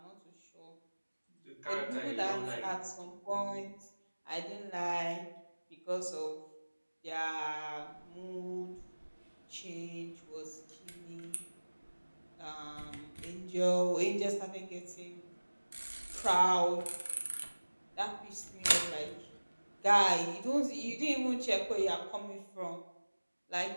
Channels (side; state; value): both; inverted; correlation -1.00